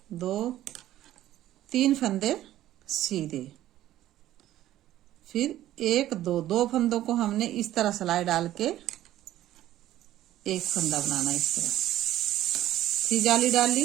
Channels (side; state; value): left; quieter; 13.6 dB